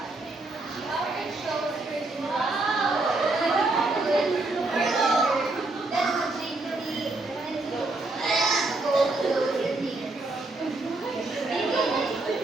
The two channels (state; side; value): quieter; left; 3.1 dB